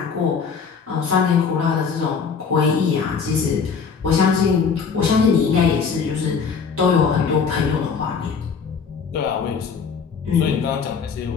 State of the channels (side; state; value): right; quieter; 5.9 dB